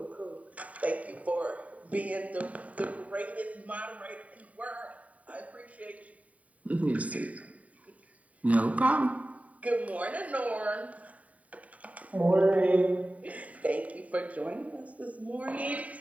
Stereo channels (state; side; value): late; left; 0.069 ms